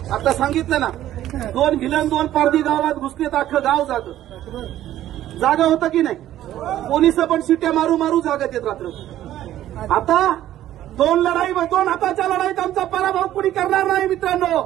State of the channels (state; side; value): quieter; left; 12.9 dB